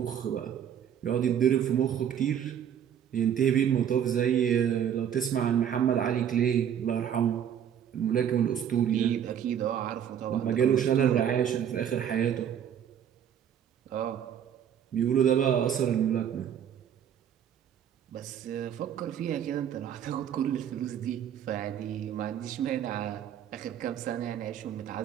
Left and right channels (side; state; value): left; quieter; 9.2 dB